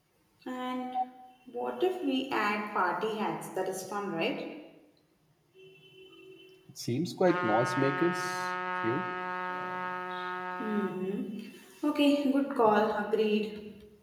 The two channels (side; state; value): both; identical; correlation 1.00